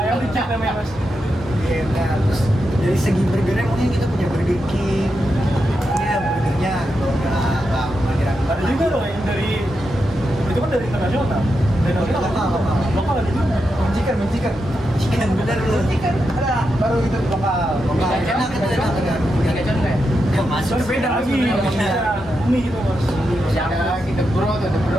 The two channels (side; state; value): both; normal; correlation 0.86